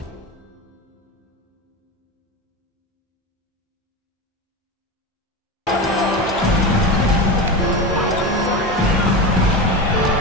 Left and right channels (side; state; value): both; normal; correlation 0.22